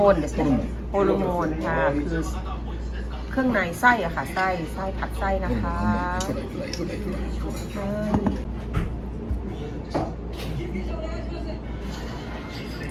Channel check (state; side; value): identical; both; correlation 1.00